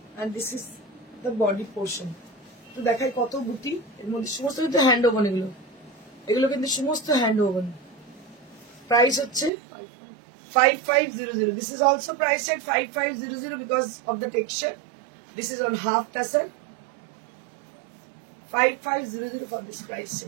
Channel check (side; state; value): left; drops out; at 9.5 s